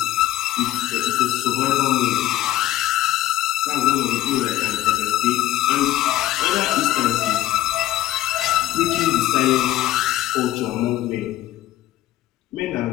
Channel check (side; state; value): right; quieter; 14.6 dB